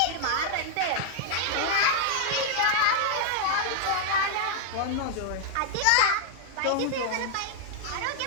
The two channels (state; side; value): different; both; correlation -0.01